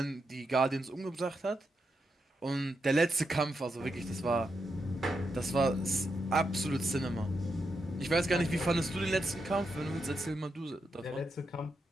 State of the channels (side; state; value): both; normal; correlation 0.84